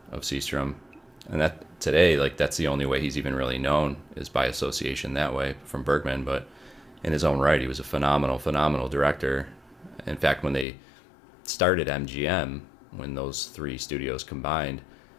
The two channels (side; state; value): right; drops out; at 10.7 s